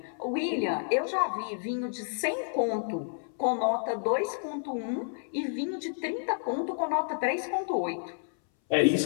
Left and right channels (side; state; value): right; silent; 58 dB below the other